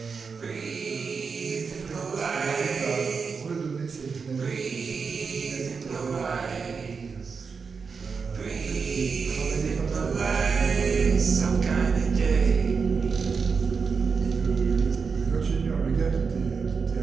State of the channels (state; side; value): quieter; left; 5.3 dB